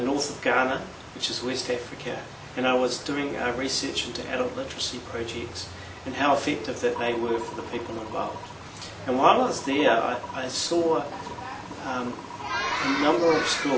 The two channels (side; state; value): both; identical; correlation 1.00